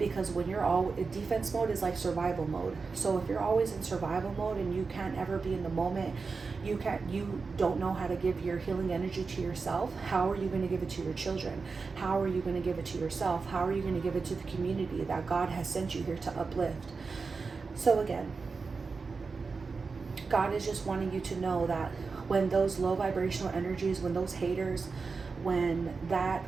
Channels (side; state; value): left; quieter; 4.6 dB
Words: when you're all defense mode is like survival mode. So if you're always in survival mode and you can't ever be in the moment, you don't know how to give your healing energy to yourself. How are you going to give it to your children? How are you going to give it to yourself? How are you going to give it to the community that God has sent you here to uplift? So again, God is just wanting you to know that when those low vibrational energies, when those haters, when that